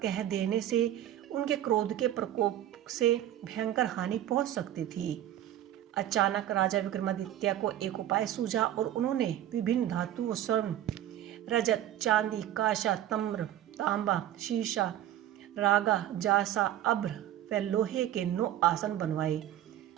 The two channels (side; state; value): left; quieter; 12.2 dB